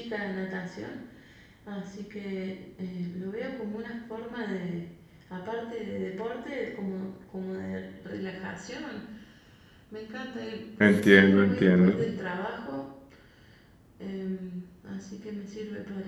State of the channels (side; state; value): both; identical; correlation 1.00